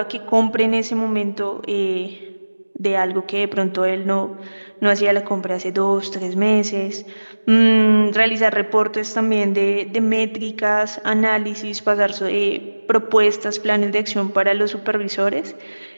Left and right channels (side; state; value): both; inverted; correlation -1.00